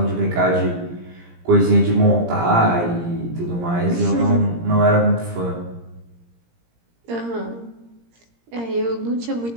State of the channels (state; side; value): late; left; 17 ms